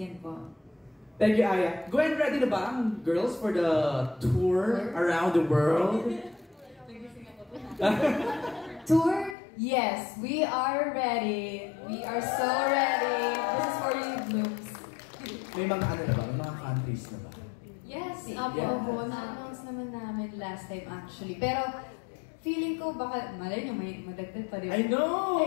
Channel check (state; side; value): drops out; right; at 9.3 s